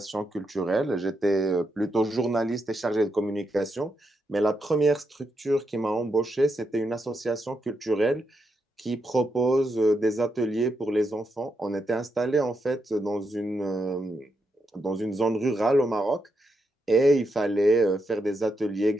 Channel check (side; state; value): both; normal; correlation 0.82